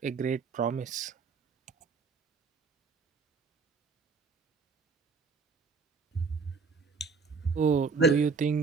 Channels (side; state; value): left; quieter; 4.9 dB